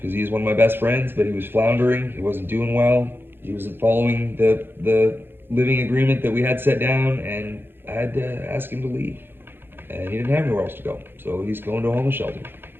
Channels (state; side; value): late; left; 0.10 ms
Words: he's one of my best friends, but he was floundering. He wasn't doing well. He wasn't following the living agreement that we had set down, and I had to ask him to leave. And he didn't have anywhere else to go, so he's going to a homeless shelter.